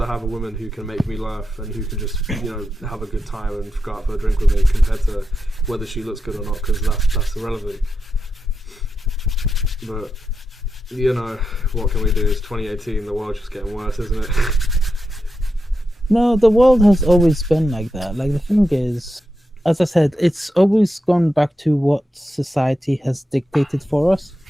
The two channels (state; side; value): normal; both; correlation 0.87